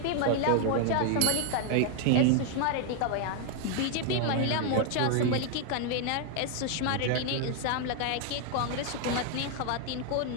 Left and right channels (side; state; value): both; different; correlation 0.00